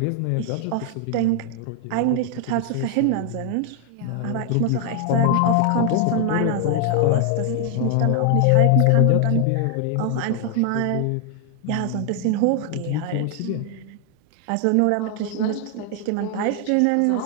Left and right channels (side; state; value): both; different; correlation 0.00